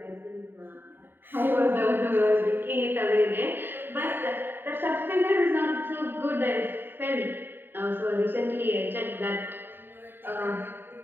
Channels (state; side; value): late; left; 0.097 ms